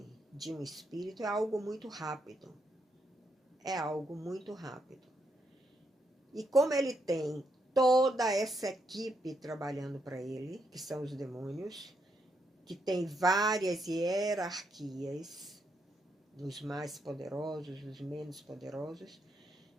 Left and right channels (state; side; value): normal; both; correlation 0.79